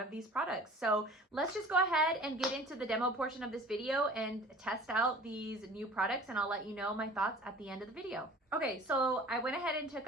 these products. So let's just go ahead and get into the demo portion of this video and test out these new products, and I'll let you know my thoughts at the end of the video. Okay, so I went ahead and took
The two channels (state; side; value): normal; both; correlation 0.45